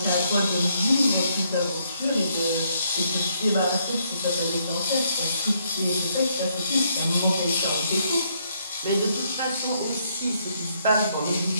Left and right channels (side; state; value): both; inverted; correlation -0.72